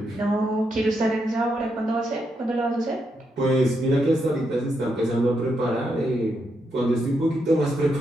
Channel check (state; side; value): normal; both; correlation 0.81